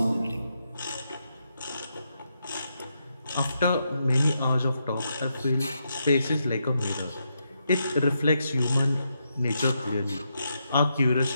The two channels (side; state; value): both; inverted; correlation -0.82